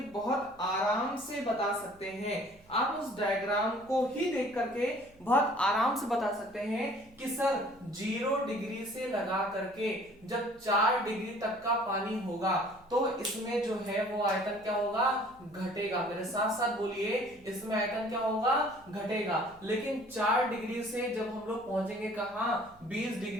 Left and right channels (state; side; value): noise; right; hum, 28 dB below the sound